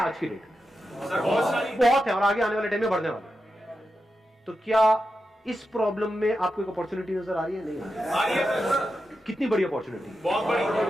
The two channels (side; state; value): both; normal; correlation 0.89